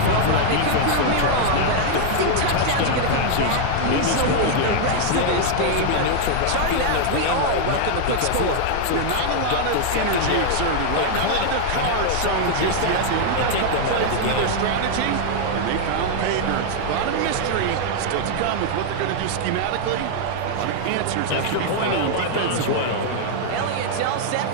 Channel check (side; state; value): both; different; correlation 0.00